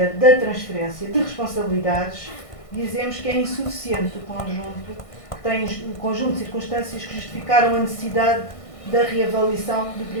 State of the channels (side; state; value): right; late; 1.6 ms